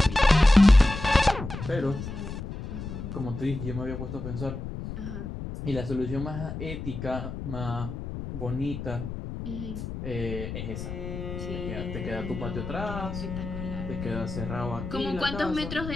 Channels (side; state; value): left; noise; rumble, 7 dB below the sound